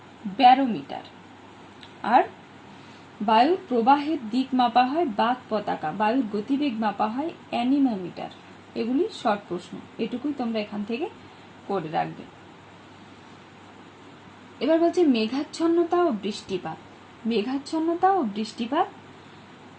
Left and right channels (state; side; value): identical; both; correlation 1.00